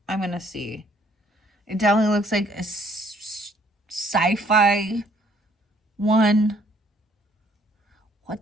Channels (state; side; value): normal; both; correlation 0.63